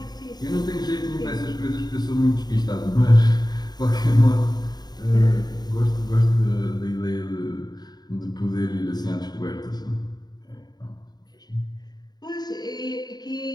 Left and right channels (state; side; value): late; right; 0.20 ms